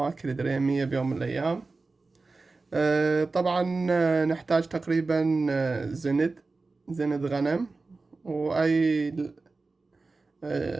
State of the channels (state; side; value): quieter; left; 3.7 dB